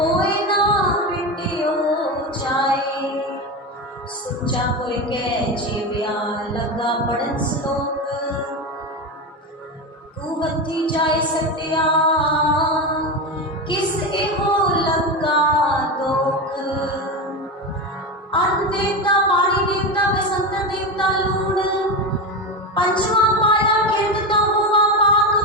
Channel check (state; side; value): normal; both; correlation 0.18